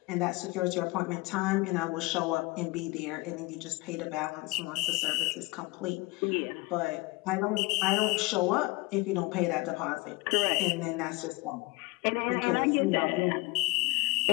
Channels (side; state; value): right; quieter; 23.3 dB